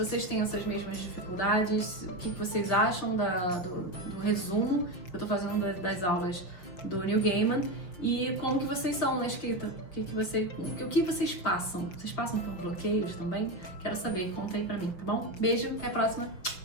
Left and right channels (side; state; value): right; late; 5.9 ms